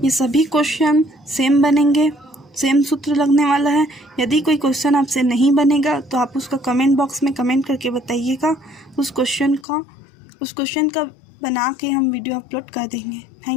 ये सभी क्वेश्चन सेम बनेंगे, सेम सूत्र लगने वाला है। यदि कोई क्वेश्चन आपसे नहीं बनेगा तो आप उसका कमेंट बॉक्स में कमेंट करके बताइएगा। उस क्वेश्चन का बना के हम वीडियो अपलोड कर देंगे।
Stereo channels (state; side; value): drops out; right; at 9.7 s